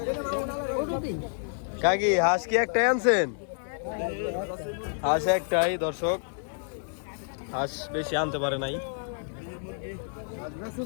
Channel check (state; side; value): silent; right; digital silence